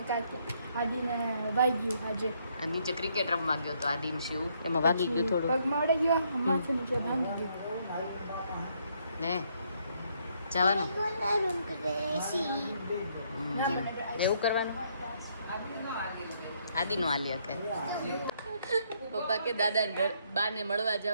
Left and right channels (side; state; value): both; inverted; correlation -0.71